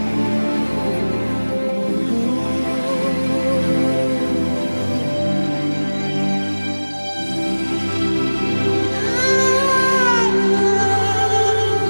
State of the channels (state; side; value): inverted; both; correlation -1.00